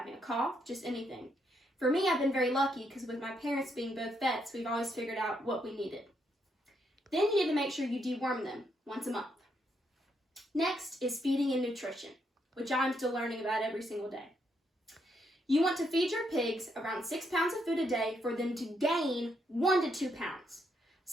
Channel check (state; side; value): normal; both; correlation 0.77